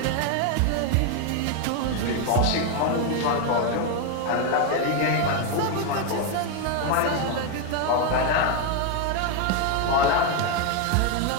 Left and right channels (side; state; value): both; different; correlation 0.01